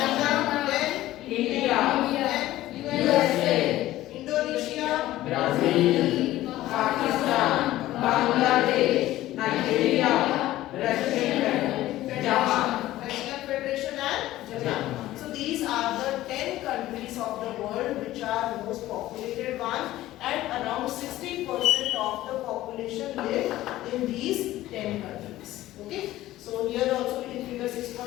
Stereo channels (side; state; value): right; quieter; 15.4 dB